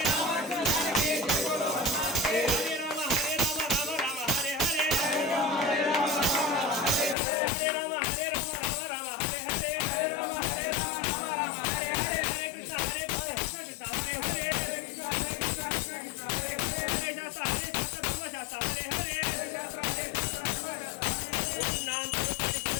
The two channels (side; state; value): right; drops out; at 7.2 s